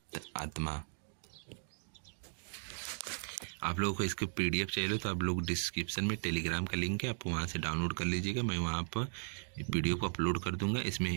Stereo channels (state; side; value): silent; left; digital silence